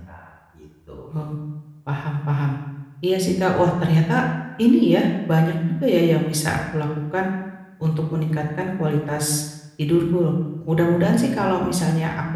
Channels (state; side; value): identical; both; correlation 1.00